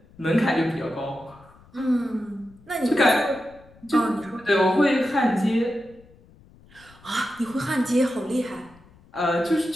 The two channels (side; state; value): left; noise; rumble, 26 dB below the sound